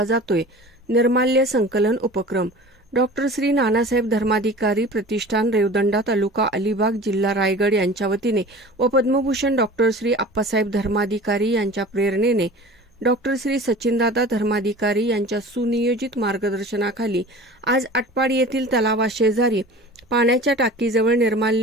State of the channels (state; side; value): normal; both; correlation 0.40